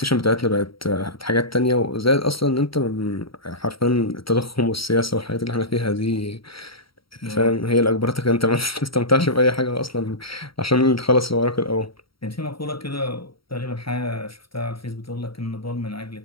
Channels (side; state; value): right; late; 0.75 ms